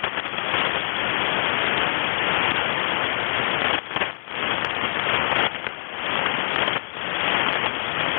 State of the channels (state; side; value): silent; right; 62 dB below the other